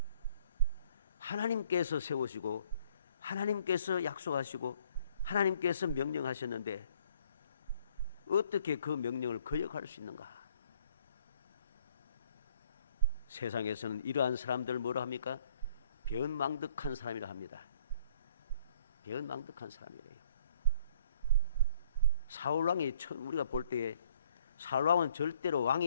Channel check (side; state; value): both; inverted; correlation -0.61